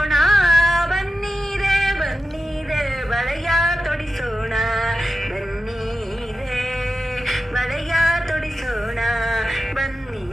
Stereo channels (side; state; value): both; normal; correlation 0.91